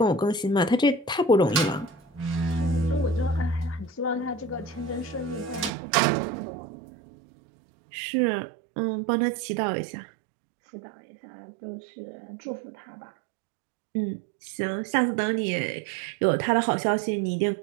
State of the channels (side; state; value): left; drops out; at 5.7 s